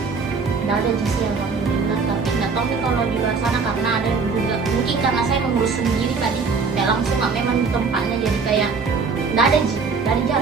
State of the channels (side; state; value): left; quieter; 4.9 dB